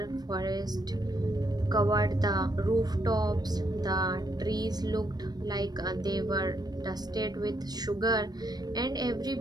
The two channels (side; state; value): left; late; 0.19 ms